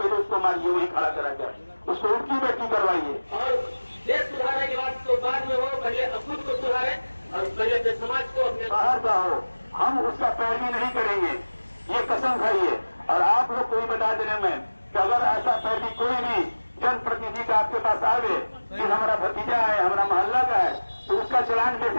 उसको मारिए, वही खड़ा करा कर उसको उल्टी बैठी करवाइए। और देश सुधारने के बाद तो बाद में हो, पहले खुद को सुधारे और पहले समाज को अपने बाहर का हो, हम उसका पैरवी नहीं करेंगे, ये कसम खाइए। और आप लोग को भी बता देने में कि अगर ऐसा पैरवी कोई भी जनप्रतिनिधि का आपके पास आवे कि हमारा भतीजा है, हमारा मोहल्ला का है, तो उसका चलान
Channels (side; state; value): both; inverted; correlation -1.00